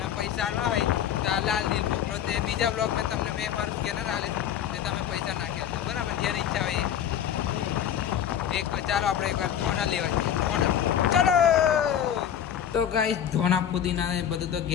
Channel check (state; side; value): quieter; right; 9.5 dB